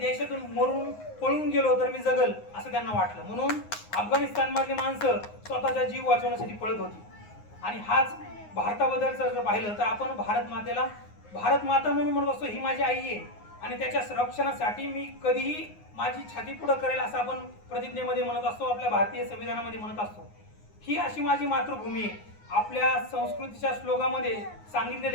मरून पळून गेलो तर मी जगल असं त्यांना वाटलं. म्हणून अफगाणिस्तानमधली माणसं स्वतःचा जीव वाचवण्यासाठी पळत होती. आणि हाच भारताबद्दलचं जर पाहिलं तर आपण भारत मातेला भारत माता म्हणून म्हणत असतो, ही माझी आई आहे आणि त्याच्या संरक्षणासाठी मी कधीही माझी छाती पुढं करेल असं आपण प्रतिज्ञेमध्ये म्हणत असतो, आपल्या भारतीय संविधानामध्ये म्हणत असतो. ही अशी माझी मातृभूमी आहे. आपल्या संस्कृतीच्या श्लोकामध्ये सांगितलेलं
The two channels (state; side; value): late; right; 9.6 ms